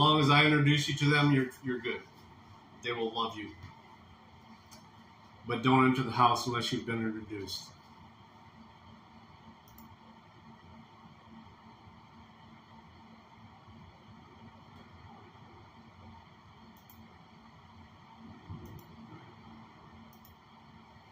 as I introduce you to them, you're good. They will love you. But don't enter the house unless you've been introduced.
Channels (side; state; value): both; identical; correlation 1.00